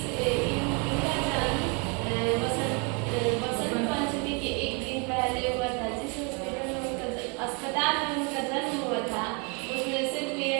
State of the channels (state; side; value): quieter; left; 34.1 dB